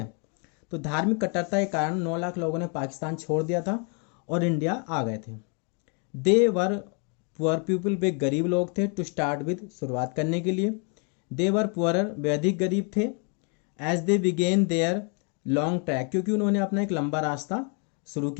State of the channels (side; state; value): right; quieter; 37.6 dB